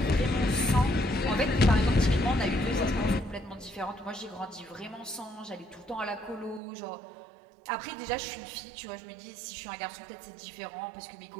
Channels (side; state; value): left; drops out; at 6.6 s